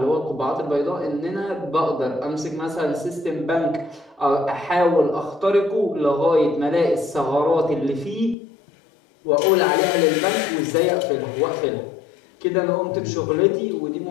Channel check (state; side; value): drops out; right; at 8.3 s